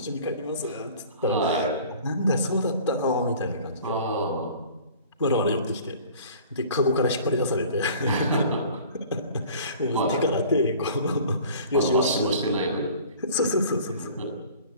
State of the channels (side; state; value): both; inverted; correlation -0.47